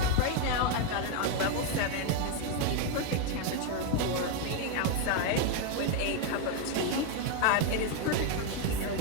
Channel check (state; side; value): different; both; correlation 0.01